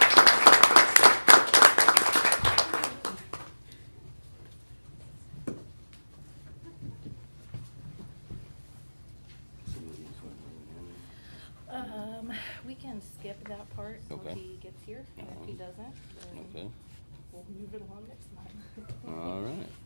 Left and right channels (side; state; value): both; inverted; correlation -1.00